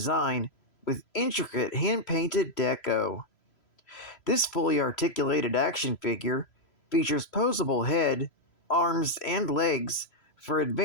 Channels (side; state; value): right; late; 3.0 ms